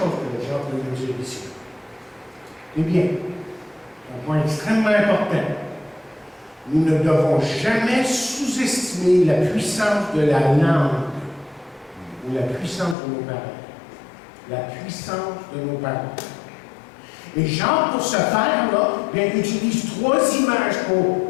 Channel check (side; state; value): right; drops out; at 13.0 s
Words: que Jacques veut nous dire ici. Eh bien, un point extrêmement important. Nous ne devons jamais sous-estimer la puissance de la langue ou la puissance de nos paroles. La puissance de nos paroles. Et Jean, pour ce faire-là, utilise trois images pour